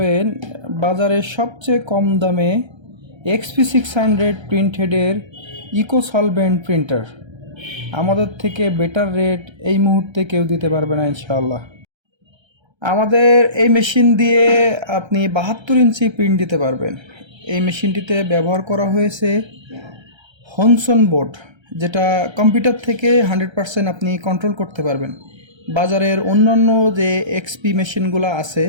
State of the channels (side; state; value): left; late; 1.3 ms